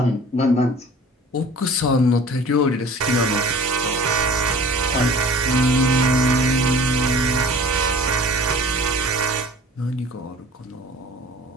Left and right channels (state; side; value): normal; both; correlation 0.45